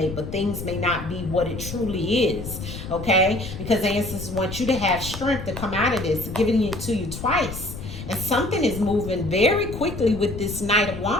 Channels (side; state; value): left; noise; rumble, 9 dB below the sound